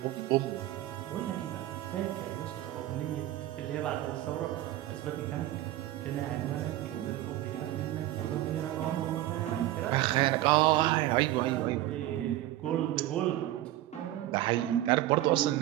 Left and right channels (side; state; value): left; quieter; 14.9 dB